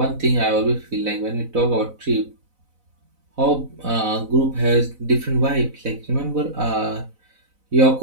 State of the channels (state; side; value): late; left; 4.0 ms